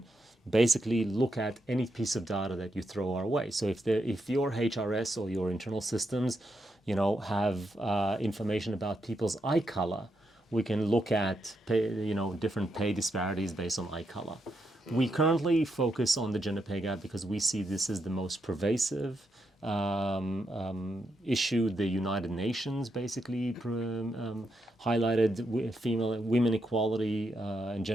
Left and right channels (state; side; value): normal; both; correlation 0.82